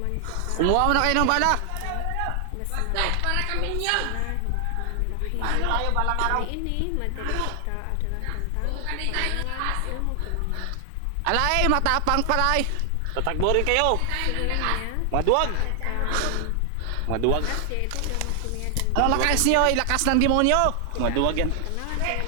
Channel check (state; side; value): different; both; correlation 0.00